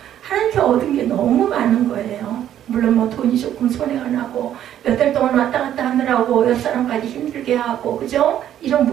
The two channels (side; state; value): left; quieter; 11.0 dB